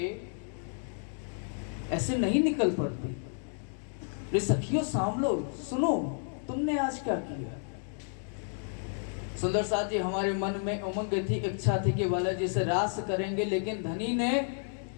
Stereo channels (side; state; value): right; silent; 57 dB below the other